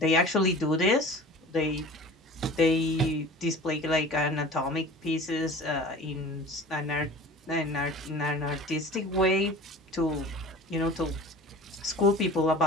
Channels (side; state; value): both; normal; correlation 0.41